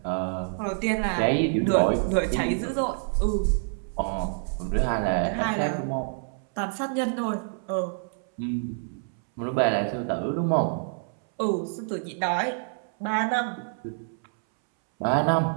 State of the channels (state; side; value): silent; left; 60 dB below the other